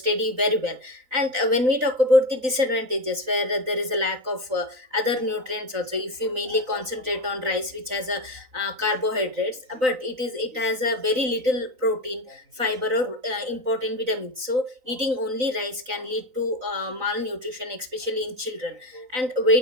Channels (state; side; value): late; left; 3.9 ms